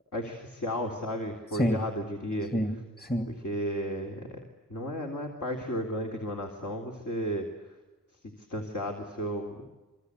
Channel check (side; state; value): both; normal; correlation 0.40